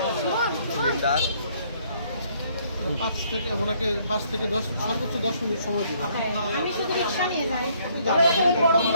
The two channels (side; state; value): both; inverted; correlation -0.66